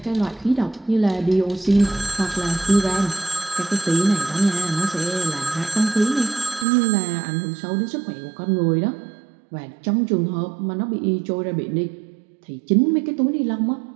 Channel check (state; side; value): drops out; left; at 6.7 s